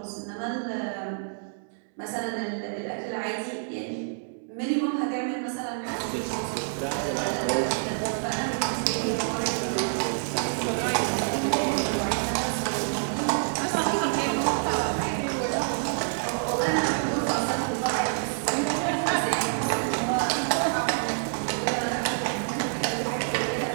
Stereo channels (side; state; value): left; silent; 60 dB below the other